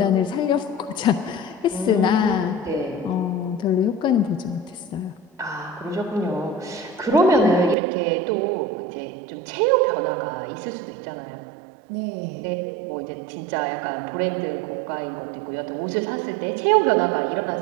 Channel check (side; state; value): left; drops out; at 7.8 s